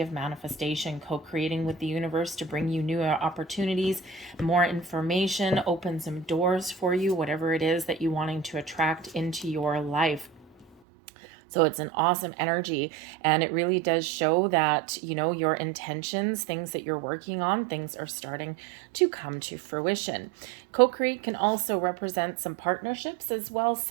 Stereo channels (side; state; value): left; drops out; at 10.7 s